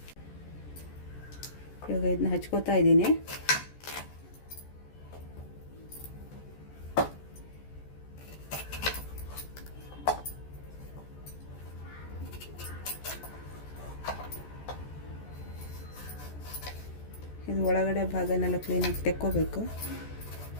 ಇವಾಗ ಇದನ್ನ ಹಚ್ಕೋತಾ ಇದ್ದೀನಿ. ಇದು ಒಳಗಡೆ ಭಾಗನೆಲ್ಲ ಕ್ಲೀನಾಗಿ ತೆಕ್ಕೋಬೇಕು.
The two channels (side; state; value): right; late; 14 ms